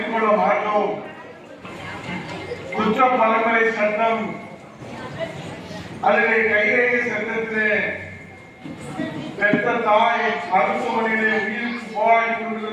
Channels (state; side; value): identical; both; correlation 1.00